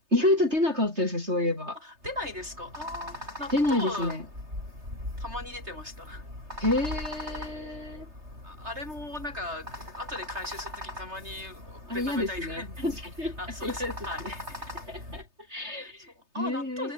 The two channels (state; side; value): late; left; 3.3 ms